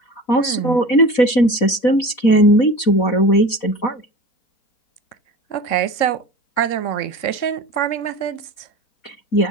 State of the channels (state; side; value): late; right; 4.1 ms